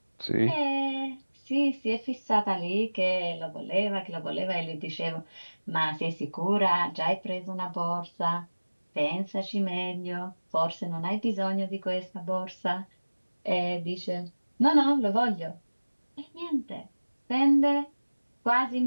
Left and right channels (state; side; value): inverted; both; correlation -1.00